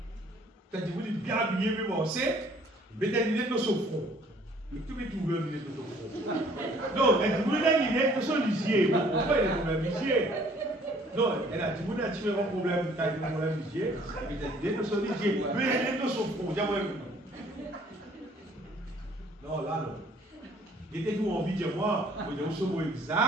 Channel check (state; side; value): normal; both; correlation 0.58